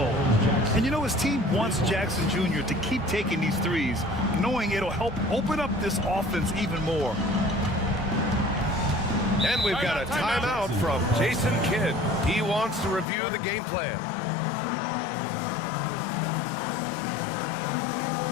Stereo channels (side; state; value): right; drops out; at 13.1 s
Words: And you know, his team wants Jackson Jr. to keep taking these threes, knowing it'll help open up this offense even more. And we've got a timeout from Jason Kidd. He wants to review the game plan.